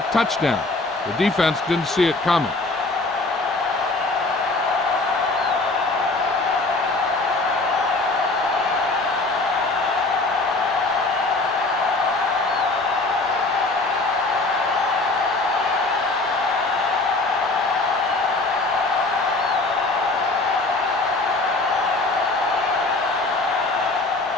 touchdown. The defense didn't see it coming.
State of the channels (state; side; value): quieter; right; 3.2 dB